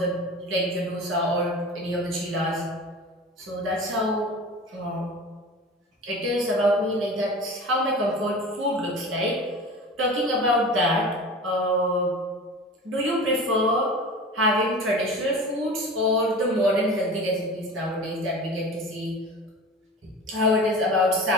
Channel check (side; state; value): both; normal; correlation 0.35